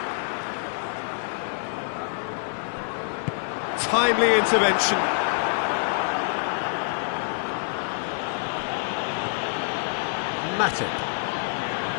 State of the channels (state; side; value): silent; right; digital silence